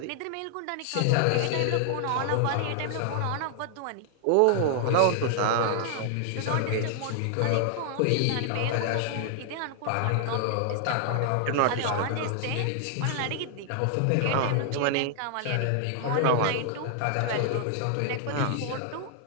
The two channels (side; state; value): both; different; correlation 0.00